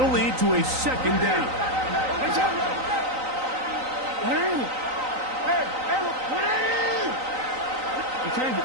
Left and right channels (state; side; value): late; left; 3.9 ms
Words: lead to a 2nd down.